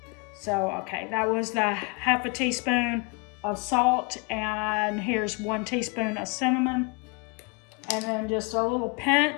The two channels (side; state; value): right; quieter; 30.7 dB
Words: So, okay, that was the half a teaspoon of salt, and here's 1 teaspoon of cinnamon, and then just a little